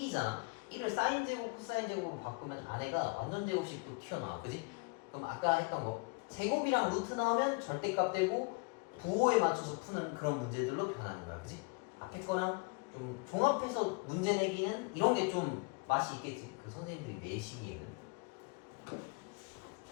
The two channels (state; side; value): quieter; right; 30.7 dB